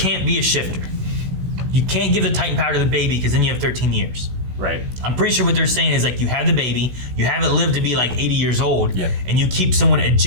be a shifter. You can't give the Titan power to the baby because then you have 13 years. Right. I'm pretty sure what they're saying is like you have the baby, you have it live to be like 80 years old, yep. And you keep someone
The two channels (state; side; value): late; left; 16 ms